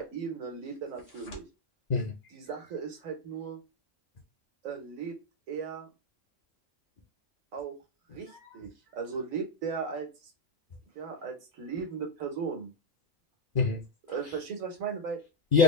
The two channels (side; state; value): both; normal; correlation 0.03